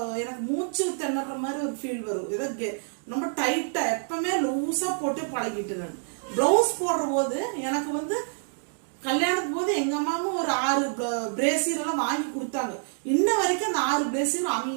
எனக்கு மூச்சு திணற மாதிரி ஒரு ஃபீல் வரும். ஏதோ ரொம்ப டைட்டா எப்பவுமே லூஸா போட்டு பழகிட்டு நான் பிளவுஸ் போடுற போது எனக்கு கல்யாணத்துக்கு போது எங்க அம்மாவும் ஒரு 6 பிரேசியர் எல்லாம் வாங்கி கொடுத்தாங்க. இன்ன வரைக்கும் அந்த 6 பிரேசியர்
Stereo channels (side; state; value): left; silent; digital silence